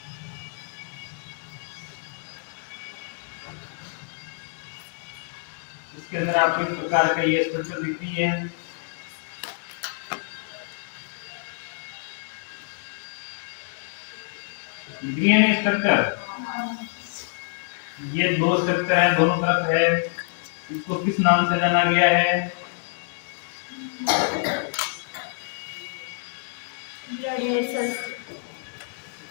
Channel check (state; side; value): silent; right; digital silence